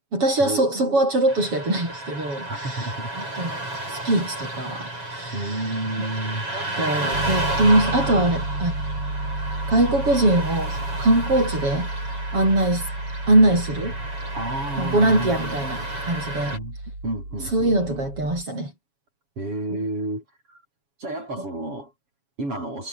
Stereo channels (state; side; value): late; left; 7.2 ms